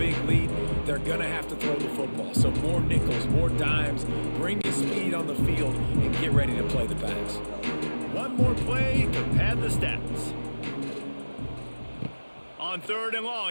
lead. They're going to have to throw the football. So more nickels, more dimes. Bring the speed on the field and get ready to play the pass. One more play to pad the stats. On 3rd and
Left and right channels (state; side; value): inverted; both; correlation -1.00